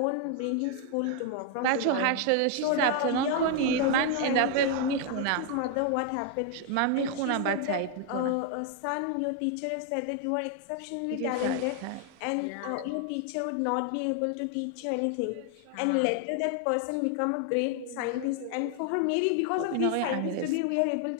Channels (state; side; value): different; both; correlation 0.00